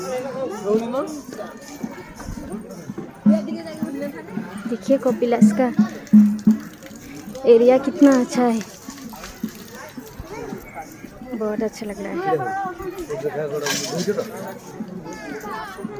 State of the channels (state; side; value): identical; both; correlation 1.00